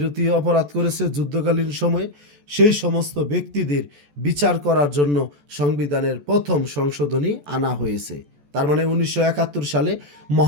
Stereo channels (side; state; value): left; late; 14 ms